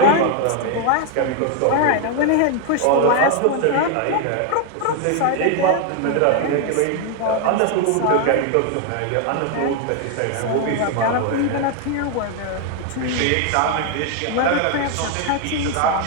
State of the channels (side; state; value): both; different; correlation 0.01